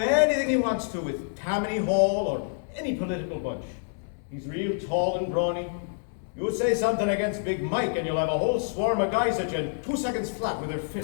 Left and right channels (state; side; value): silent; right; 60 dB below the other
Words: he wants to with Tammany Hall or any political bunch. He's real tall and brawny. You say something against Big Mike and you'll have a whole swarm of guys at you in 2 seconds flat with their